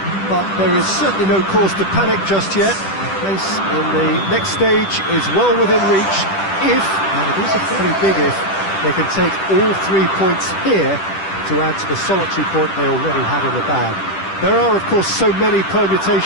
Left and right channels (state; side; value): late; right; 10 ms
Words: but there is certainly no cause to panic just yet. A place in the next stage is well within reach if, and it is a fairly big if, they can take all 3 points here to add to the solitary point they already had in the bag. There are, of course, so many